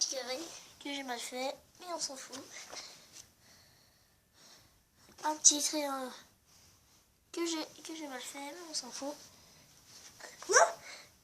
carré que j'ai mal fait, mais on s'en fout. Un petit triangle que j'ai mal fait, mais on s'en fout.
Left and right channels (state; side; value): identical; both; correlation 1.00